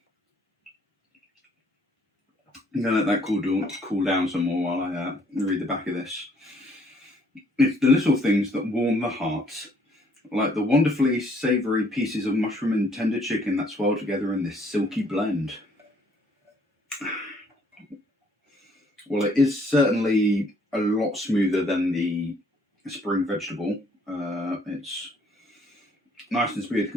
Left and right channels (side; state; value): both; normal; correlation 0.63